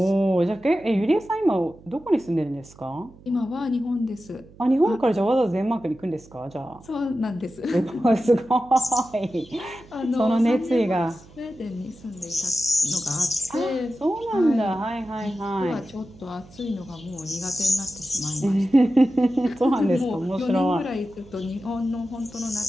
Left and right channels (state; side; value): noise; right; hum, 23 dB below the sound